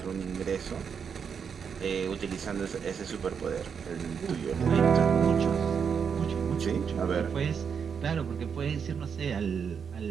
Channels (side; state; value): left; quieter; 6.8 dB